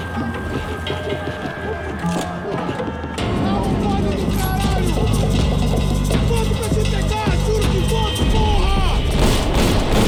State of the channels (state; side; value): identical; both; correlation 1.00